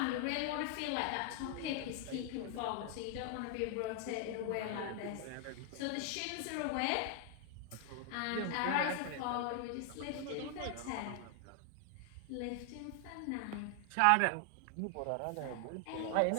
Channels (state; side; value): different; both; correlation 0.00